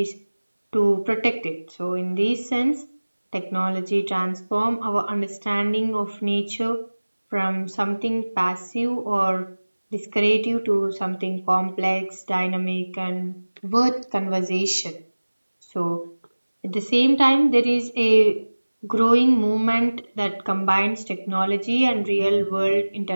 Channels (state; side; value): inverted; both; correlation -1.00